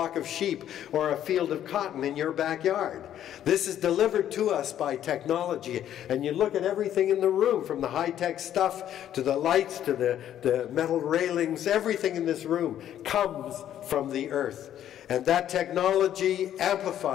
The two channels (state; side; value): quieter; right; 11.0 dB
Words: of sheep or a field of cotton in your backyard. This is delivered to us by technology. And you look at everything in the room, from the high-tech stuff to the lights to the metal railings, everything in this room comes from the earth. And that technology